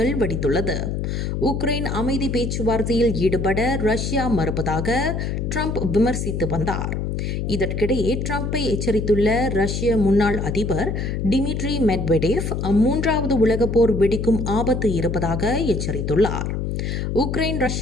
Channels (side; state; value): left; noise; hum, 2 dB below the sound